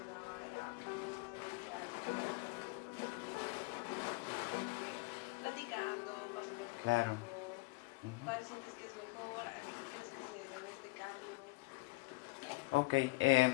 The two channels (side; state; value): right; quieter; 23.8 dB